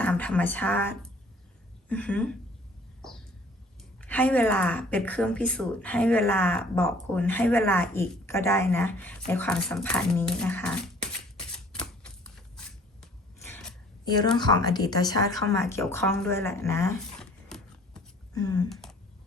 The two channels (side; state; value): both; normal; correlation 0.54